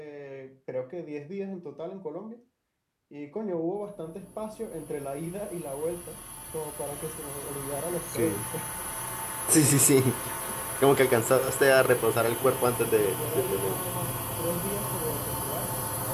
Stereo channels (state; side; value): identical; both; correlation 1.00